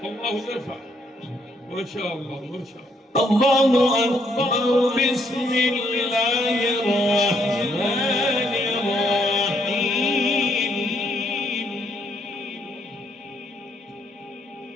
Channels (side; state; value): both; normal; correlation 0.71